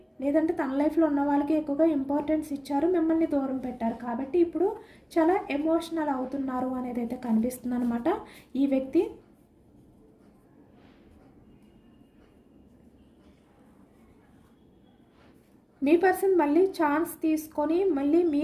లేదంటే తన లైఫ్లో ఉన్న వాళ్ళకి ఎక్కువగా ఇంపార్టెన్స్ ఇచ్చారు, మిమ్మల్ని దూరం పెట్టారు. కాబట్టి ఇప్పుడు చాలా ఎమోషనల్ అవుతున్నారు అనేది అయితే కనిపిస్తుంది అనమాట ఈ వ్యక్తి. మీ పర్సన్ మళ్ళీ ఛాన్స్ తీసుకొని మళ్ళీ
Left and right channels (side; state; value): both; identical; correlation 1.00